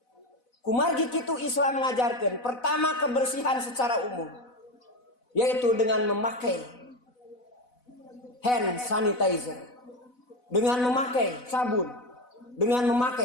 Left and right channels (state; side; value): late; right; 4.0 ms